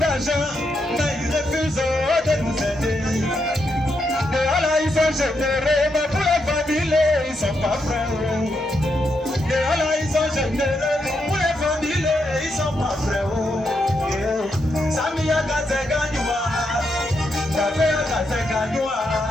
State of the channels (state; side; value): normal; both; correlation 0.81